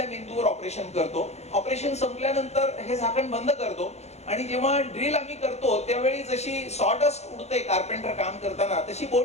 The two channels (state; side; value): late; right; 0.31 ms